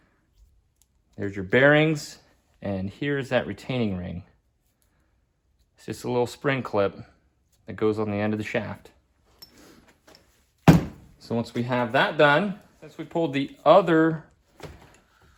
there's your bearings, and here's that retaining ring. It's just a little spring clip that goes on the end of the shaft. So once we have that done, since we pulled the other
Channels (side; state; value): both; identical; correlation 1.00